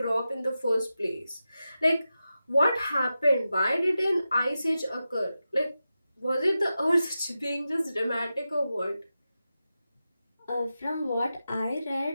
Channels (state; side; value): inverted; both; correlation -0.92